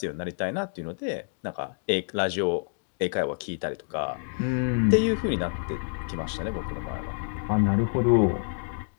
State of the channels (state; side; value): silent; right; digital silence